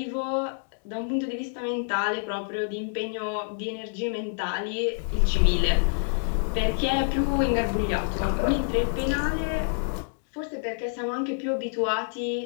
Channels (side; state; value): right; silent; digital silence